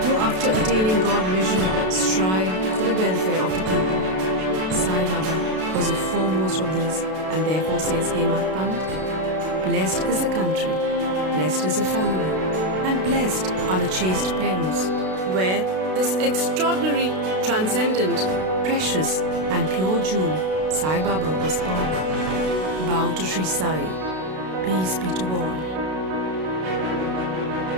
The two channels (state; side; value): late; left; 32 ms